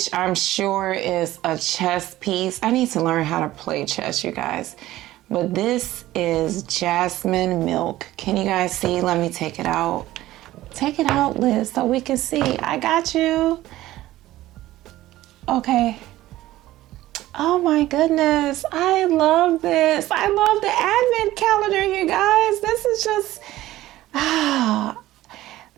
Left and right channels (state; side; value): quieter; left; 15.7 dB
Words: I'm sure is a chest piece. I need to learn how to play chess, you guys. But this is jasmine milk. Can you guys see? Let me take it out. Take it out, Liz, so we can see. I got you. Okay. Oh my goodness. I love this. I love the Advent calendar, you guys. This is just,